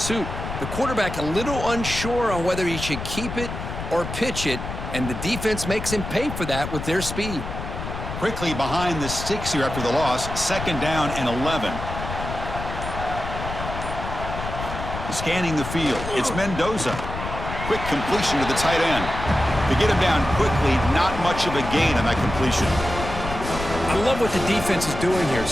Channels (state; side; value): noise; left; rumble, 7 dB below the sound